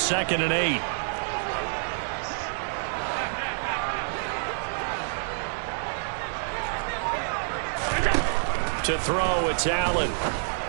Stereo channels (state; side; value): silent; left; digital silence